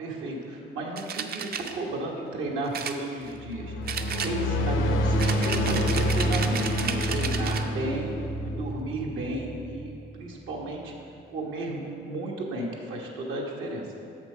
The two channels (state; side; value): normal; both; correlation 0.52